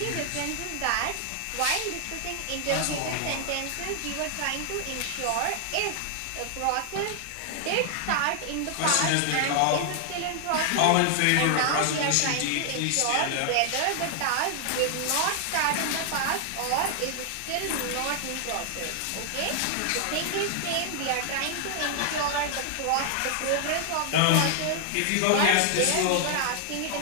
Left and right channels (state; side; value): different; both; correlation 0.00